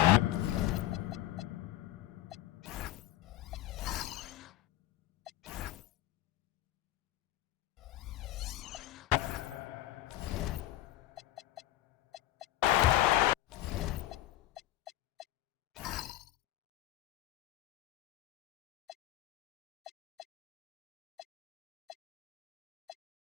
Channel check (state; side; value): quieter; right; 15.1 dB